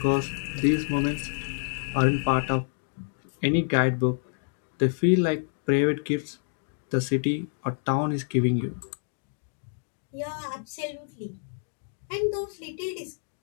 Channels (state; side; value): silent; right; digital silence